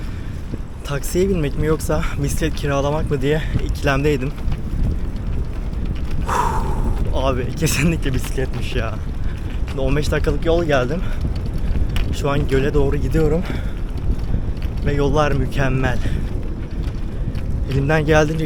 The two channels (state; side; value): identical; both; correlation 1.00